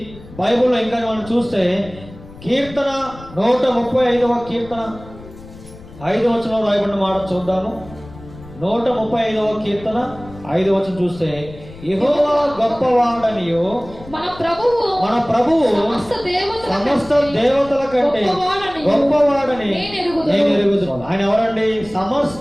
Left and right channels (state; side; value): noise; left; rumble, 18 dB below the sound